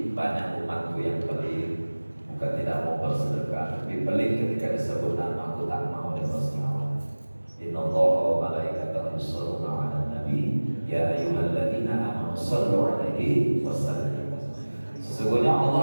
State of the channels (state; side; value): inverted; both; correlation -1.00